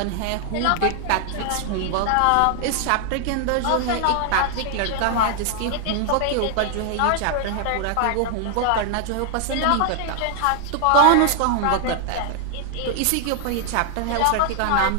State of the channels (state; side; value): different; both; correlation 0.00